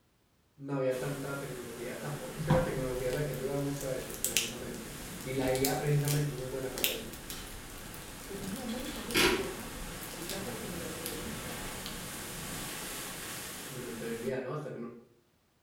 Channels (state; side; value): identical; both; correlation 1.00